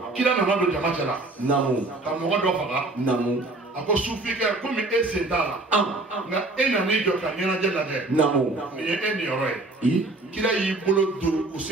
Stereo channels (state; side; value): quieter; left; 3.0 dB